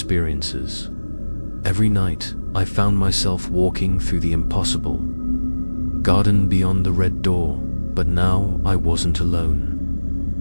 Every night, I found myself walking through the impossible garden beyond the red door, but now I wasn't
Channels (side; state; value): both; inverted; correlation -1.00